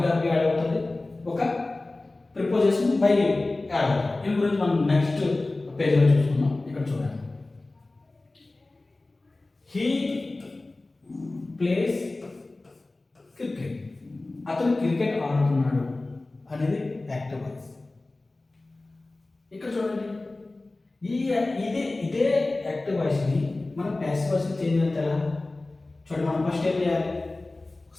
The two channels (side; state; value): right; quieter; 3.0 dB